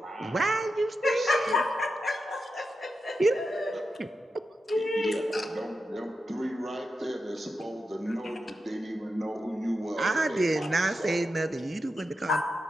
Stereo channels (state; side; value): normal; both; correlation 0.89